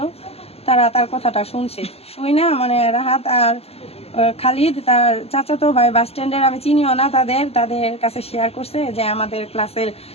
তারা তার কথাটা শুনছে, শুই না মানে রাহাত আর খালিদ তার চাচাতো ভাই বাস স্ট্যান্ডের, আমি চিনিও না তাদের কাছে শেয়ার করছে যে আমাদের ক্লাসের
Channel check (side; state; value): right; late; 0.29 ms